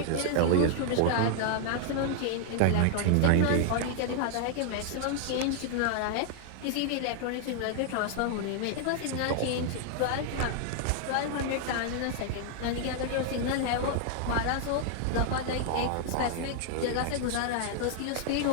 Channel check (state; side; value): different; both; correlation 0.00